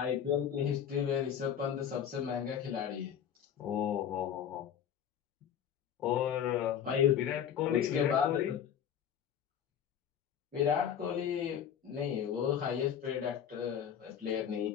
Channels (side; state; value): right; quieter; 8.9 dB